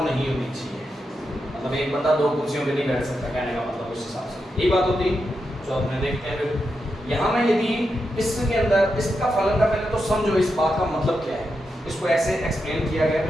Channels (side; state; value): both; normal; correlation 0.86